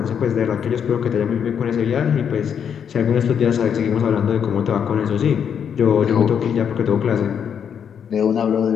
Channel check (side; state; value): right; quieter; 7.8 dB